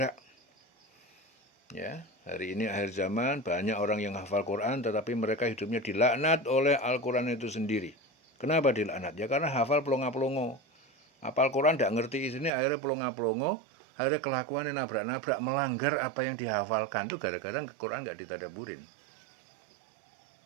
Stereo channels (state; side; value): drops out; left; at 12.5 s